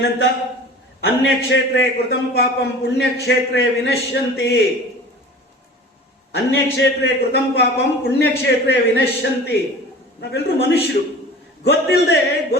ಅನ್ಯಕ್ಷೇತ್ರೇ ಕೃತಂ ಪಾಪಂ ಪುಣ್ಯಕ್ಷೇತ್ರೇ ವಿನಶ್ಯಂತಿ. ಅನ್ಯಕ್ಷೇತ್ರೇ ಕೃತಂ ಪಾಪಂ ಪುಣ್ಯಕ್ಷೇತ್ರೇ ವಿನಶ್ಯಂತಿ. ನಾವೆಲ್ಲರೂ ಮನುಷ್ಯರು.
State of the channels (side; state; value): both; normal; correlation 0.40